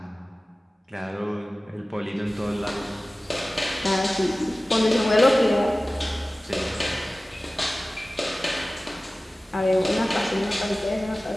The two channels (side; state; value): both; normal; correlation 0.97